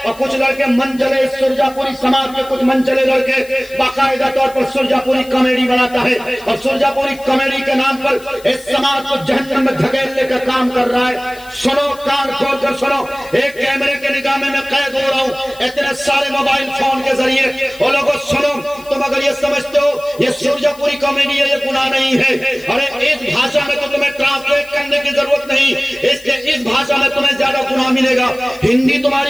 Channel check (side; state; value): left; noise; hiss, 22 dB below the sound